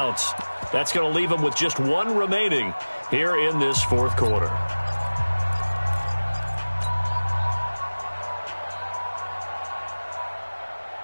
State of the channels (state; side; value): inverted; both; correlation -1.00